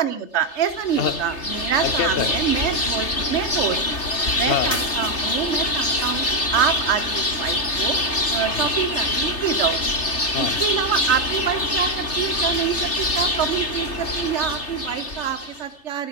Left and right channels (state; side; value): late; right; 3.3 ms